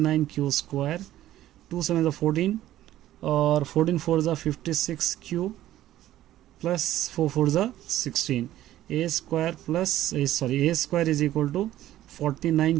q square, 2 7 14 और 14 4 56 q plus 4 4 16, a square plus a square is equal to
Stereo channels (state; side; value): quieter; left; 13.7 dB